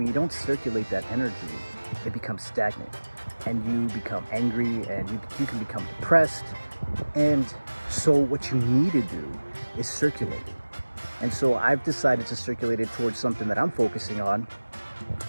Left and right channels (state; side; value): inverted; both; correlation -1.00